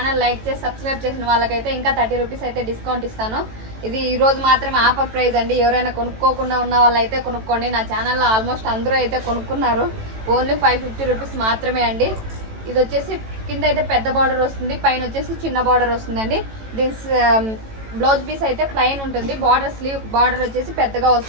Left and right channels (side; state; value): left; late; 18 ms